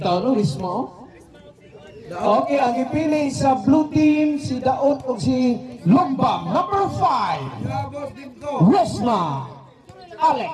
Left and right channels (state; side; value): identical; both; correlation 1.00